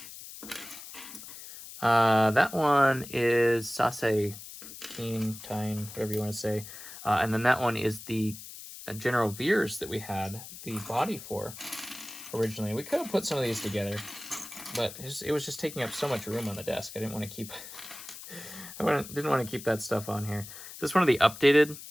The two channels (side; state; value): left; noise; hiss, 13 dB below the sound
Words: That one is Sase, Tine, whatever you want to say. And then that one is the General Veers that we had the body for originally. We could have put some of these together, but it was just taking up so much room on the desk. I didn't want to keep didn't want to keep that stuff on here. Is this one of the updated?